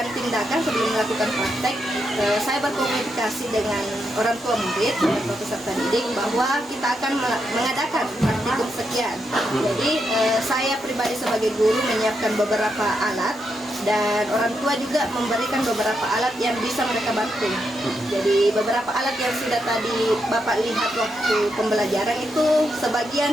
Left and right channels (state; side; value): normal; both; correlation 0.82